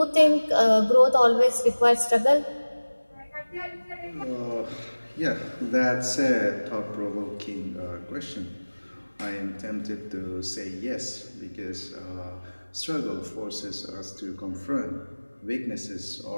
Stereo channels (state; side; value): inverted; both; correlation -1.00